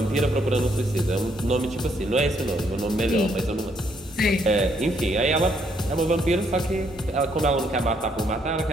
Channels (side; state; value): both; normal; correlation 0.71